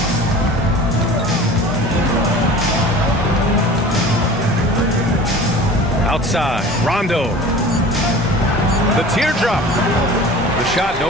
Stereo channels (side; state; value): both; normal; correlation 0.40